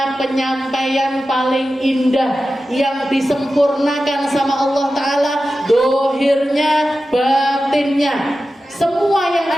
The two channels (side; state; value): both; normal; correlation 0.93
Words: penyampaian paling indah, yang disempurnakan sama Allah Ta'ala dohirnya, batinnya. Semua yang